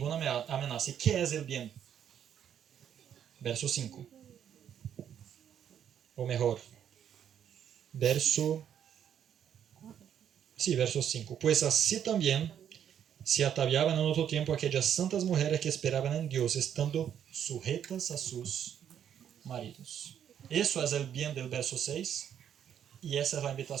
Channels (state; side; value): quieter; left; 9.3 dB